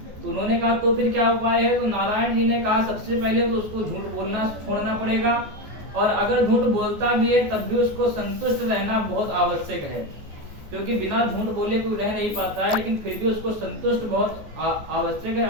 तो उन्होंने कहा तो फिर क्या उपाय है? तो नारायण जी ने कहा सबसे पहले तो उसको झूठ बोलना छोड़ना पड़ेगा, और अगर झूठ बोलता भी है तब भी उसको संतुष्ट रहना बहुत आवश्यक है, क्योंकि बिना झूठ बोले कोई रह नहीं पाता है, लेकिन फिर भी उसको संतुष्ट बहुत आवश्यक है।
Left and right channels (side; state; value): left; late; 14 ms